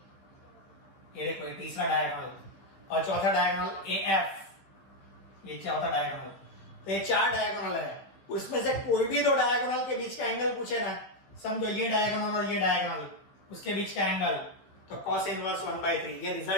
ये देखो ये तीसरा डायगोनल, और चौथा डायगोनल AF, ये चौथा डायगोनल। तो ये 4 डायगोनल है, उसमें से कोई भी 2 डायगोनल के बीच का एंगल पूछे ना, समझो ये डायगोनल और ये डायगोनल, उसके बीच का एंगल तो cos इनवर्स 1/3, ये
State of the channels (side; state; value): right; late; 15 ms